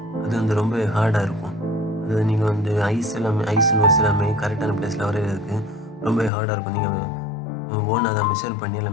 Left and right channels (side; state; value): right; drops out; at 6.3 s